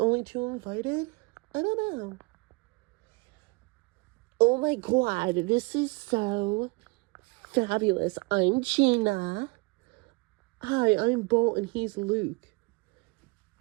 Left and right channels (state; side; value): quieter; left; 28.3 dB